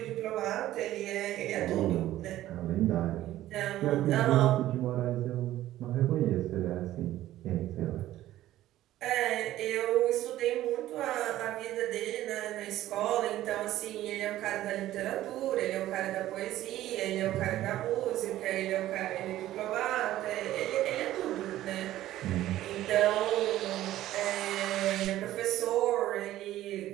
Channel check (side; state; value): left; quieter; 14.2 dB